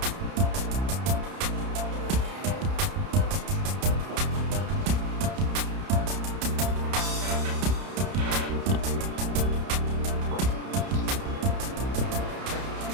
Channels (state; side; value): late; left; 31 ms